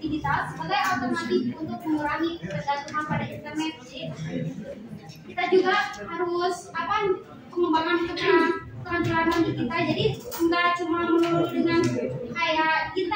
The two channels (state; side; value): identical; both; correlation 1.00